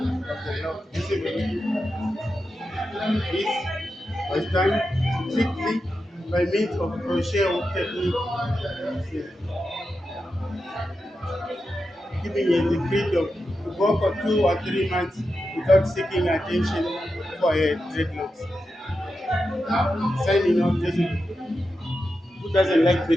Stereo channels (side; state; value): both; normal; correlation 0.89